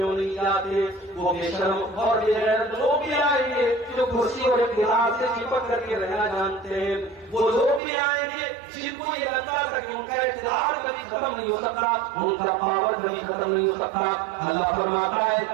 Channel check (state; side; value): drops out; left; at 7.8 s